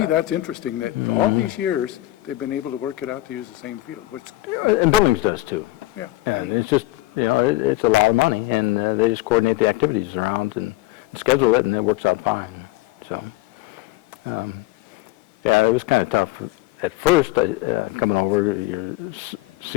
that's interesting, that all these years, they've been able to work it out to use the same field, which, And Billings does too. yeah. And it's just, it's a lot of money, and they just coordinate the activities around and schedule it, and it works out fine. So, it was kind of tough at first, coming over, your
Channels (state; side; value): quieter; right; 17.8 dB